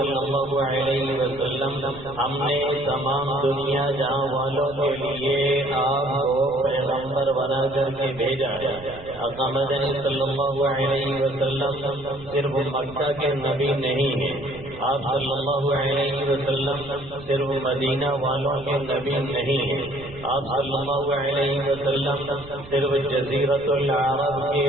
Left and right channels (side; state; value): right; noise; rumble, 18 dB below the sound